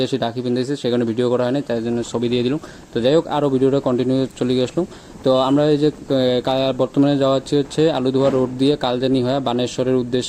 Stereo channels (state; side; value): identical; both; correlation 1.00